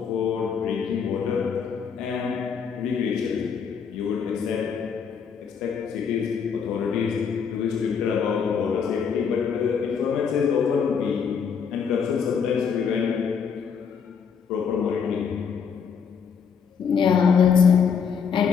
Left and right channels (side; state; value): right; quieter; 6.6 dB